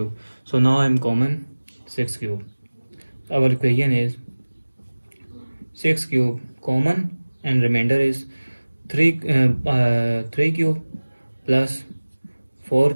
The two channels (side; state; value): both; inverted; correlation -1.00